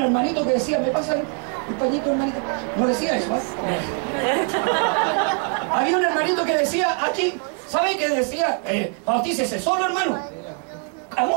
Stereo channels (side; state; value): left; quieter; 37.0 dB